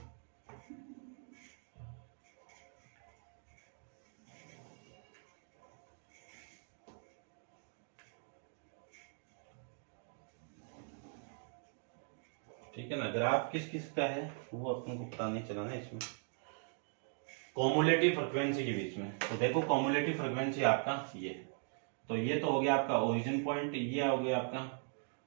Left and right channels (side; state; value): left; silent; 51 dB below the other